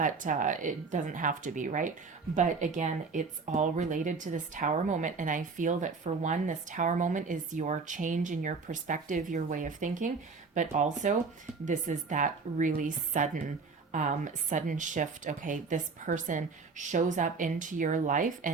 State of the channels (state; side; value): quieter; left; 4.5 dB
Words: doesn't have to be, right? But again, it's all related to this Tower moment. And I feel that for one, this Tower moment is your change in your perspective, your way of thinking. But also, this is that really sudden shift. Okay, this person shows up into your life